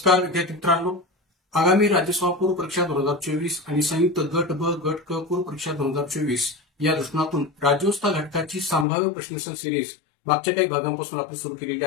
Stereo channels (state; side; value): drops out; right; at 8.8 s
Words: विद्यार्थी मित्रांनो, आगामी राज्यसभा पूर्व परीक्षा 2024 आणि संयुक्त गट ब गट क पूर्व परीक्षा 2024 या दृष्टिकोनातून राज्योत्सव घटकाची संभाव्य प्रश्नोत्तर सिरीज मागच्या काही भागांपासून आपण सुरू केलेली